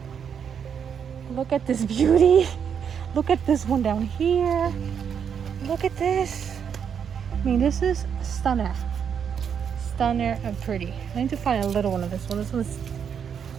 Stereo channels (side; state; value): left; quieter; 7.5 dB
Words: Look at this beauty. Look at this one down here. Look at this. I mean, this is stunner. Stunner and pretty. I need to find a little one of this one. This one's